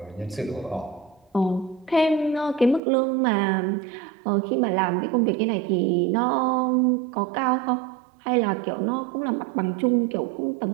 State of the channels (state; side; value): drops out; left; at 2.8 s